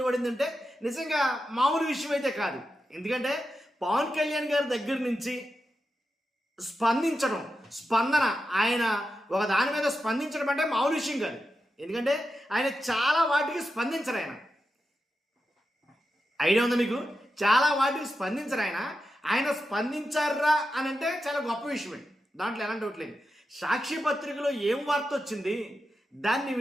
నిజంగా మామూలు విషయం అయితే కాదు. ఎందుకంటే పవన్ కళ్యాణ్ గారి దగ్గర నుంచి స్పందన ఆయన ఒక దాని మీద స్పందించడం అంటే మామూలు విషయం కాదు. ఎందుకంటే ఆయన చాలా వాటికి స్పందించరు. ఐడియా ఉందా మీకు? చాలా వాటికి స్పందించరు. ఆయన స్పందించారా అని అంటే చాలా గొప్ప విషయమే, దాంట్లో ఎలాంటి ఒకట్లేదు. సాక్షి పత్రికలో ఏం వార్త వచ్చింది, దాన్ని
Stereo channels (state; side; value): normal; both; correlation 0.89